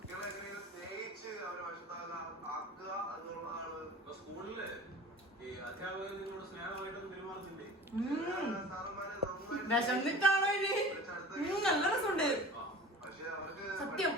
വിശന്നിട്ടാണോ ഇനി? നല്ല രസമുണ്ട് സത്യം.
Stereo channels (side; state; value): both; normal; correlation 0.39